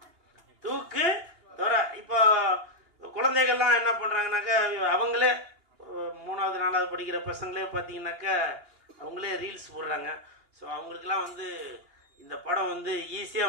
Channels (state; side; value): late; left; 2.8 ms